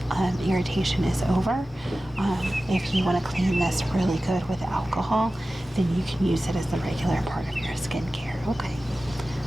irritation is over, if you want to clean this really good with alcohol, then you can use it as a regular part of your skincare. Okay,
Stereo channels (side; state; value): both; normal; correlation 0.95